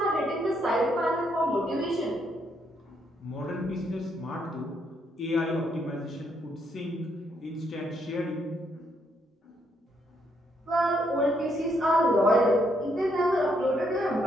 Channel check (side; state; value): both; normal; correlation 0.74